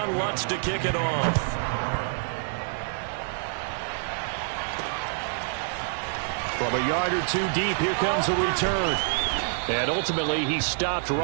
Lutz to kick it off. From a yard or two deep, here comes a return. And ultimately, he stopped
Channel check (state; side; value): silent; left; 60 dB below the other